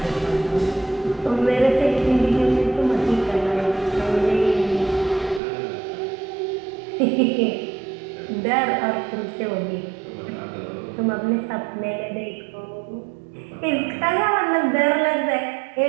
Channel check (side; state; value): left; drops out; at 5.4 s